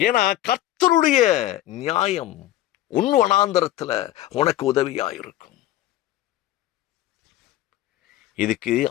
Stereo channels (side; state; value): right; quieter; 14.3 dB